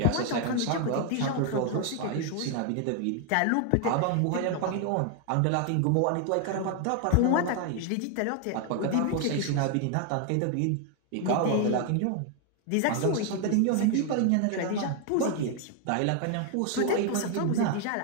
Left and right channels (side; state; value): both; different; correlation 0.00